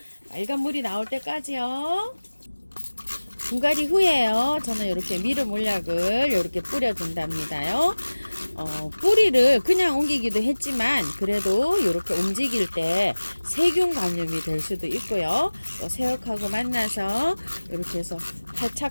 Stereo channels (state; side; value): inverted; both; correlation -1.00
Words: 맑은 물이 나올 때까지요. 분갈이 후에요. 저는 이렇게 미름 물약을 이렇게 뿌려준답니다요. 뿌리를 그냥 옮기기도 했지만 그래도 이렇게 움직일 때 세균 감염이 될 수도 있고요. 또 새옥하고 만나서 이렇게 해서